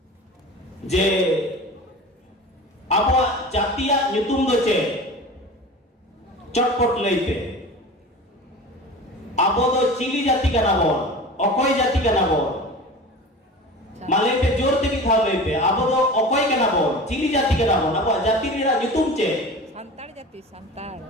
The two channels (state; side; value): normal; both; correlation 0.35